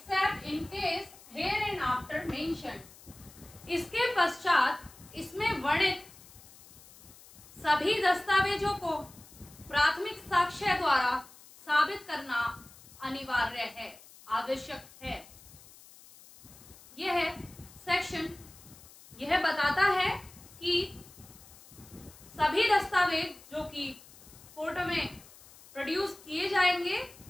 in case here and after mentioned. इसके पश्चात इसमें वर्णित सभी दस्तावेजों को प्राथमिक साक्ष्य द्वारा साबित करना अनिवार्य है, आवश्यक है। यह सेक्शन यह बताता है कि सभी दस्तावेज जो कि कोर्ट में प्रोड्यूस किए जाएंगे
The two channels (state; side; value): noise; left; hiss, 22 dB below the sound